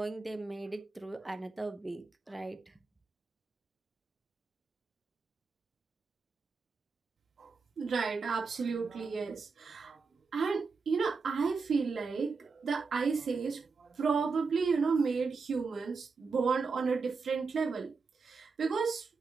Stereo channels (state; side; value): quieter; left; 4.7 dB